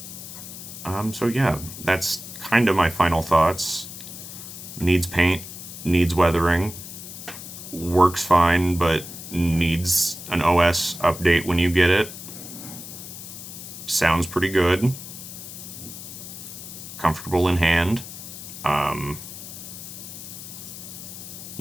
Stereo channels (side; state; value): left; noise; hiss, 12 dB below the sound